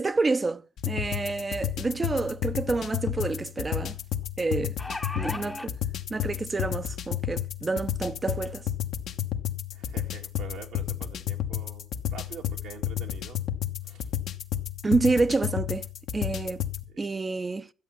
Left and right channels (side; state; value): both; normal; correlation 0.65